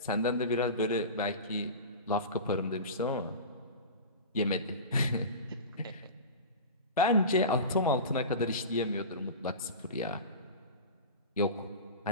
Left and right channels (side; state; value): both; inverted; correlation -0.30